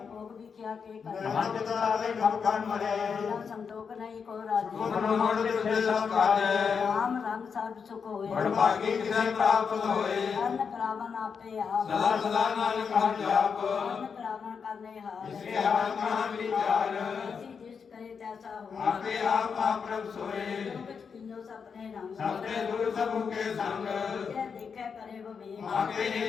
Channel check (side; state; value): right; quieter; 6.1 dB